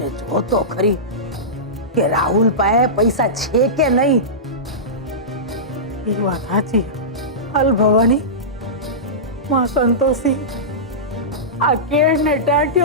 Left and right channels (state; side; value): normal; both; correlation -0.17